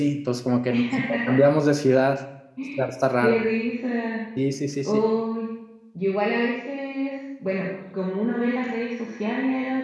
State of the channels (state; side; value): identical; both; correlation 1.00